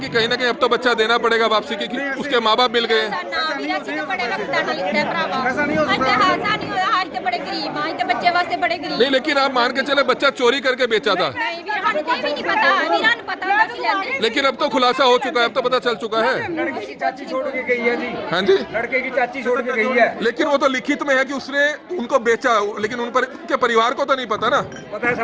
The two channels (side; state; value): both; identical; correlation 1.00